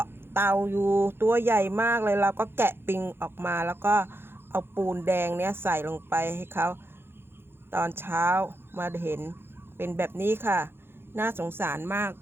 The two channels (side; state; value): left; late; 0.11 ms